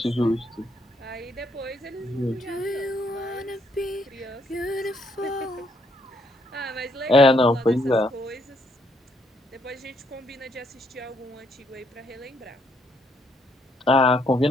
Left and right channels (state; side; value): normal; both; correlation 0.71